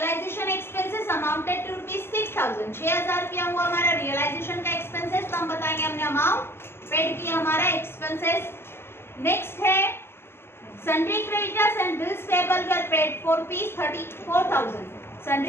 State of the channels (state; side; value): late; right; 0.11 ms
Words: एक्सपेंसेस अमाउंटेड टू ₹6000। 6000 रुपया हुआ हमारा रियलाइजेशन का एक्सपेंसेस, तो हम बताएंगे हमने अमाउंट पेड किया हमारा एक्सपेंसेस। नेक्स्ट है sundry creditors and bills payable were paid for ₹34,000।